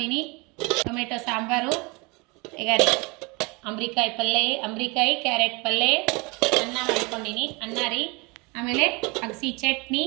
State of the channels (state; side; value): quieter; left; 27.6 dB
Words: ಟೊಮೆಟೊ ಸಾಂಬಾರು, ಈಗ ರೀ ಅಂಬ್ರಿಕಾಯಿ ಪಲ್ಯ, ಅಂಬ್ರಿಕಾಯಿ ಕ್ಯಾರೆಟ್ ಪಲ್ಯ, ಅನ್ನ ಮಾಡ್ಕೊಂಡಿನಿ. ಅನ್ನ ರೀ, ಆಮೇಲೆ ಅಗಸಿ ಚಟ್ನಿ,